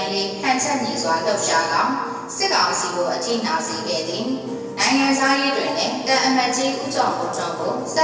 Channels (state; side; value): identical; both; correlation 1.00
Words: ရေးဟန်ချက်ညီစွာလှုပ်ရှားသောစစ်ကောင်စီကိုအထိနာစေခဲ့သည်နိုင်ငံသားရေးတွင်လည်းတန်အမတ်ကြီးဦးကျော်မိုးထွန်းကိုဆက